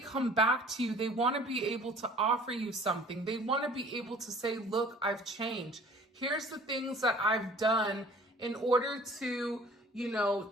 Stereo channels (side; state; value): both; normal; correlation 0.49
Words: back to you, they want to be able to offer you something. They want to be able to say, look, I've changed. Here's the things that I've done in order to, you know,